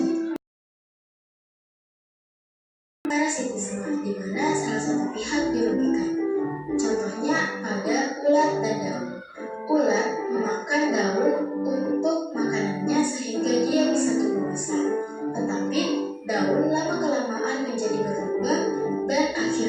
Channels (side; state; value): both; identical; correlation 1.00